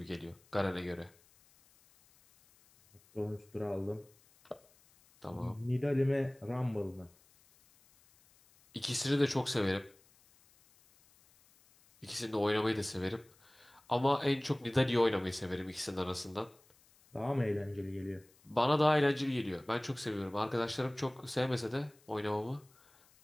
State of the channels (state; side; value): noise; left; hiss, 30 dB below the sound